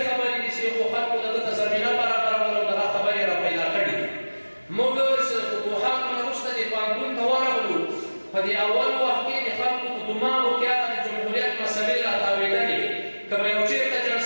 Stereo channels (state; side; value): inverted; both; correlation -1.00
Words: خبرې دي چې خو خلکو دغه ته زمینه برابروله او دغه خبرې را پیدا کړي. موږ چې فتوحاتو نه وروسته د پوهنتون ته ورغلو، په دې اول وخت کې د خلکو په دماغو کې هغه د جمهوریت مسلې راتاوېدلې، که به یو چېرته